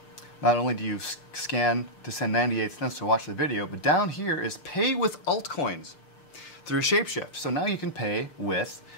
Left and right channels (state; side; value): late; right; 6.7 ms